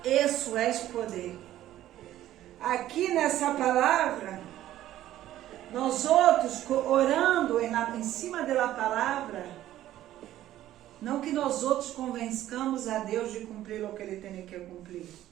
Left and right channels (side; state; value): left; quieter; 13.4 dB